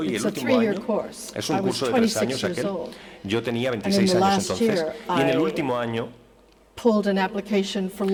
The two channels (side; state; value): both; identical; correlation 1.00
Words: y el it's a último 3-year año course. es I un was curso de 3 26 años years aquel. old. Yo tenía And in 26 the años last entonces year, y en el I último año pulled an application for